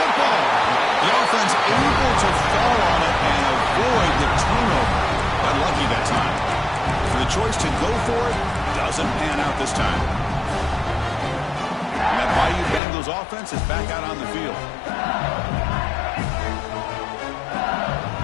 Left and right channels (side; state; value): right; drops out; at 12.8 s